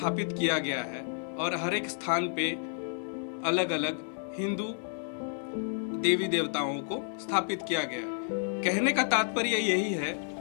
किया गया है और हर एक स्थान पे अलग अलग हिंदू देवी देवताओं को स्थापित किया गया है। कहने का तात्पर्य यही है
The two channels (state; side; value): silent; right; 57 dB below the other